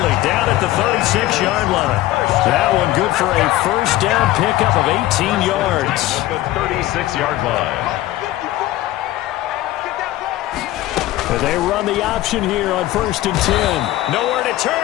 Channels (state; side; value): quieter; right; 15.8 dB